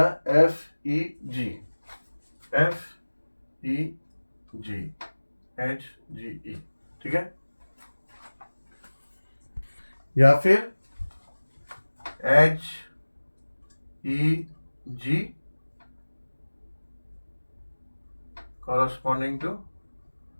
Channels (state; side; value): inverted; both; correlation -1.00